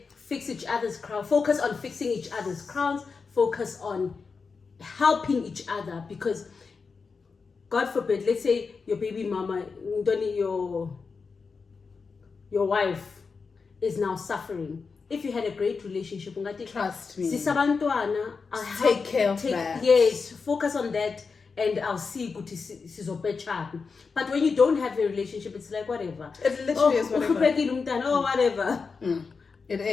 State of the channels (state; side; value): quieter; right; 4.9 dB